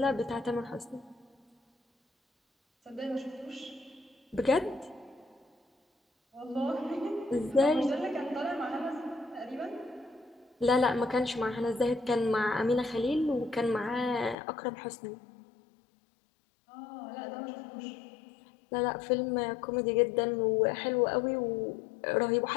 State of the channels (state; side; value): drops out; right; at 14.4 s